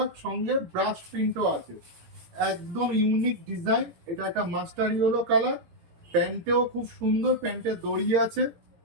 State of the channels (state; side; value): late; left; 17 ms